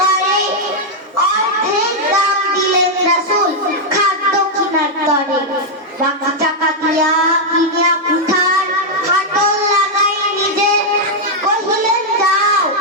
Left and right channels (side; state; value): both; normal; correlation -0.02